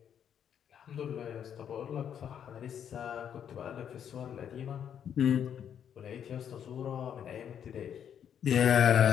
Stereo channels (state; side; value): quieter; right; 8.8 dB